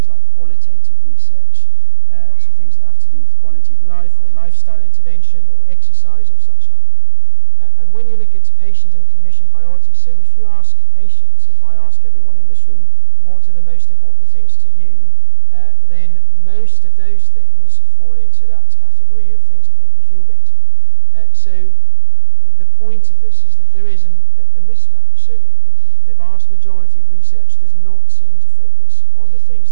like qualitative research, so things that have to do with quality of life or lifestyle intervention or exercise or such like. And when you look at patient and clinician priorities, so if you ask patients, if I ask everyone in this room, what are the most important things to you, then most of those things fall into that category of things that make me feel better. The point of this is that there is a mismatch. So the vast majority of research does not seem to focus on the things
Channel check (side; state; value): both; inverted; correlation -0.51